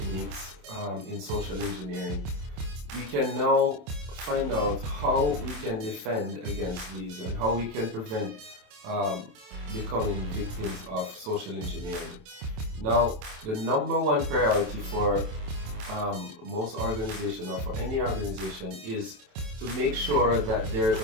in social engineering, we can now find out how we can defend against these and how we can prevent becoming victims of social engineering. Now, the number one priority for most organizations, or for any organization, is to make sure that there is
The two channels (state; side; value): late; left; 27 ms